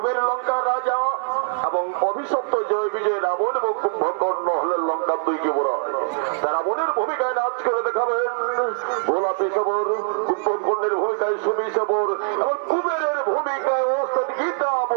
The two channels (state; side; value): silent; left; 60 dB below the other